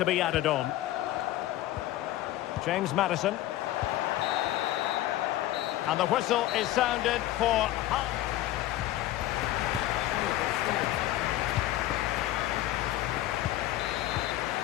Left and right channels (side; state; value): right; quieter; 14.8 dB